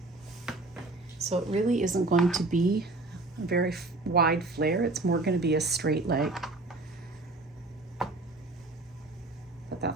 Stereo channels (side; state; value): left; quieter; 3.0 dB